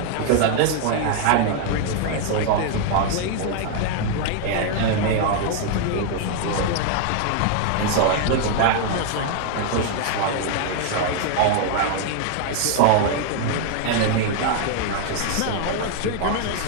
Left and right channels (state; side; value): different; both; correlation 0.00